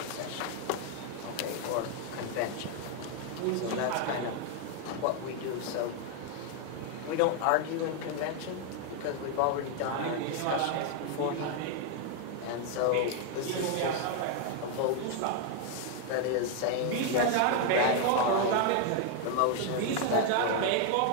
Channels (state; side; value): different; both; correlation 0.00